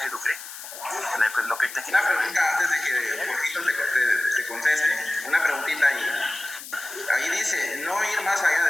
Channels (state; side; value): noise; left; hiss, 12 dB below the sound